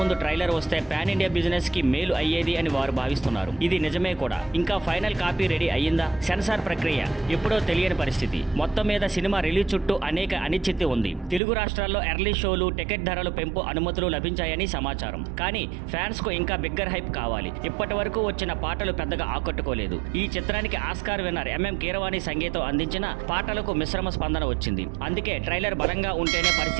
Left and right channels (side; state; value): left; drops out; at 11.4 s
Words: ట్రైలర్ వస్తే పాన్ ఇండియా బిజినెస్ కి మేలు అయ్యేది అని వారు భావిస్తున్నారు. ఇది నిజమే కూడా. ఇంకా ఫైనల్ కాపీ రెడీ అయ్యిందా? సెన్సార్ ప్రక్రియ ఎప్పుడో తెలియని పరిస్థితి. మొత్తం మీద సినిమా రిలీజ్ చుట్టూ అనేక అనిశ్చితి ఉంది. తెలుగు రాష్ట్రాల్లో ఎర్లీ షోలు, టికెట్ ధరలు పెంపు అనుమతులు లభించాయని సమాచారం. కానీ ఫ్యాన్స్ కు ఇంకా బిగ్గర్ హైప్ కావాలి. ఇప్పటి వరకు వచ్చిన పాటలు పెద్దగా ఆకట్టుకోలేదు. ఈ చిత్రానికి ఆస్కార్ విన్నర్ ఎంఎం కీరవాణి సంగీతం అందించిన పాటలకు మిశ్రమ స్పందన వచ్చింది. అందుకే ట్రైలర్ బలంగా ఉంటేనే